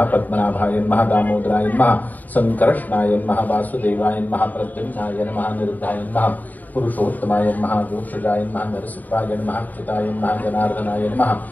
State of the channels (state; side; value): late; right; 0.082 ms